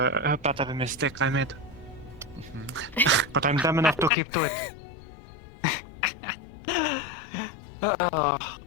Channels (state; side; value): drops out; right; at 4.1 s